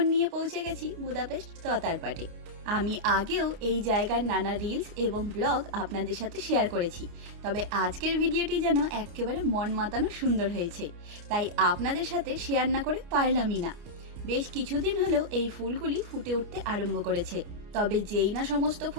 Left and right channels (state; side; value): late; left; 29 ms